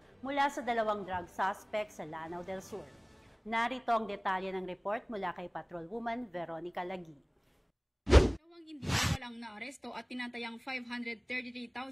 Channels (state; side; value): identical; both; correlation 1.00